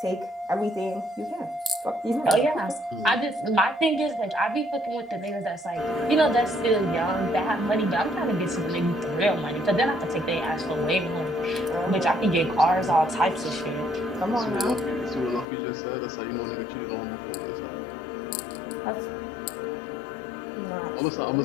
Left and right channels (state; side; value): drops out; right; at 15.5 s